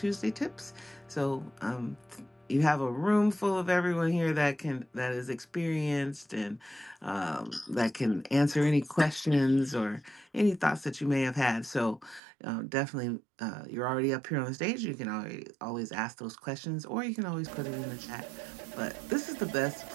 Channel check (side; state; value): left; drops out; at 12.2 s